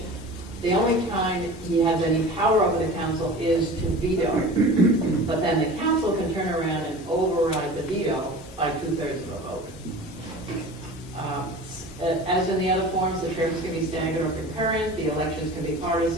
The only time he has any power over the council is to veto. But then the council can turn around and override the veto by 2/3 of a vote. As in the other forms, the terms can be staggered or concurrent. The elections can be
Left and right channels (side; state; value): both; normal; correlation 0.37